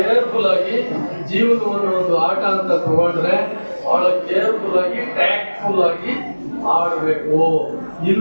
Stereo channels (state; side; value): inverted; both; correlation -1.00